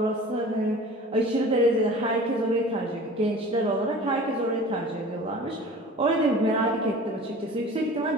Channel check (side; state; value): both; normal; correlation 0.41